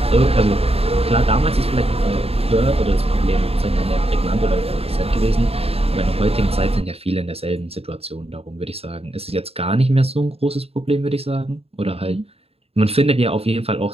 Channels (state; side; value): late; left; 0.29 ms